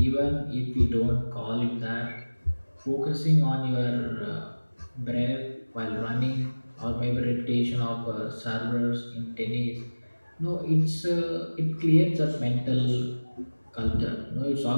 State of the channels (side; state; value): both; inverted; correlation -1.00